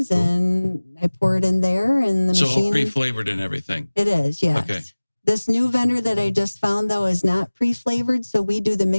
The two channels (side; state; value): both; inverted; correlation -1.00